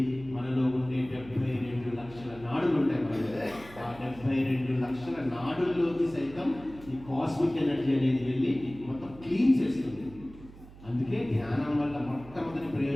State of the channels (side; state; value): right; noise; hum, 19 dB below the sound